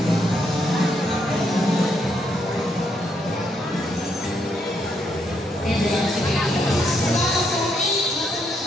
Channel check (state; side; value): normal; both; correlation 0.76